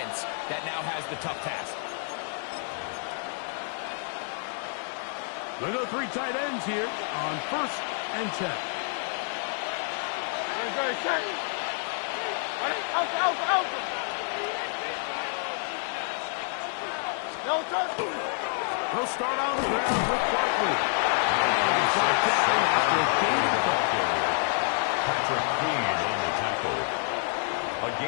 that now has the tough task. They go three tight ends here on 1st and 10. They'll start on the ground with Barkley. Patrick Queen on the tackle. A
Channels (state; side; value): silent; right; 59 dB below the other